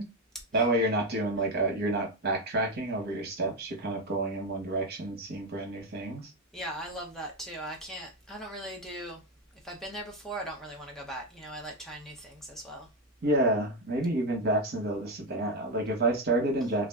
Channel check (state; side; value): normal; both; correlation 0.11